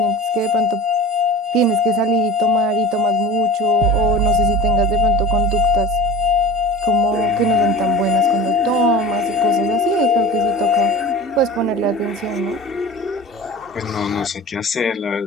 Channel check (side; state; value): both; normal; correlation 0.37